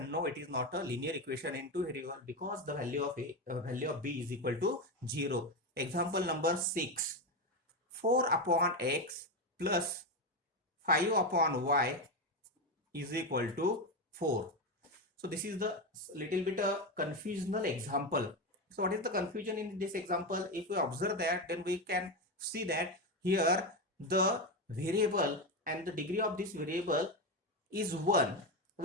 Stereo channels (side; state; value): both; normal; correlation 0.13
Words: No, it is not a linear equation in two variable because the value of b is equal to 0. Example number 6: 4 upon x plus 5 upon y is equal to 4. So this is the little bit a confusional example. So what is the confusion in this example? If we observe that, then we can see that here the variable and the degree of this variable is 1.